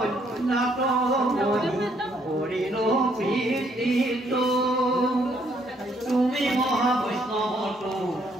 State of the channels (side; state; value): both; normal; correlation 0.69